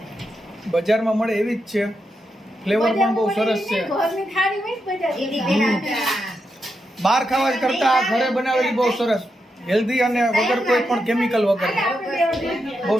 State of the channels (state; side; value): normal; both; correlation 0.85